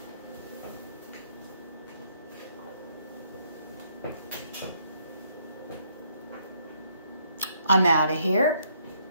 I'm out of here.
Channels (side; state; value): both; inverted; correlation -0.70